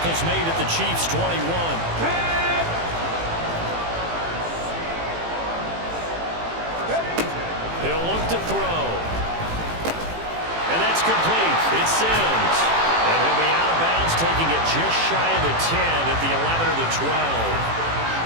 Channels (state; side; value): late; left; 18 ms